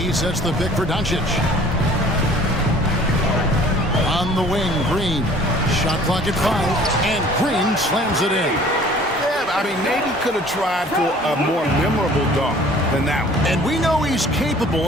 sets the pick for Doncic. On the wing, Green. Shot clock at 5, and Green slams it in. Yeah, I mean, maybe could have tried for a more memorable dunk than that one. And we know he's capable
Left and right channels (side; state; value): both; normal; correlation 0.51